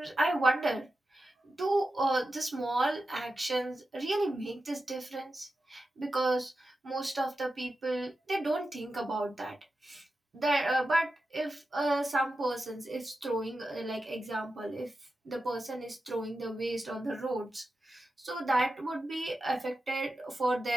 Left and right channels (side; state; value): both; normal; correlation 0.91